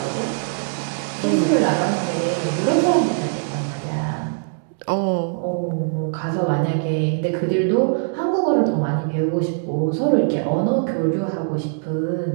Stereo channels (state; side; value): silent; left; digital silence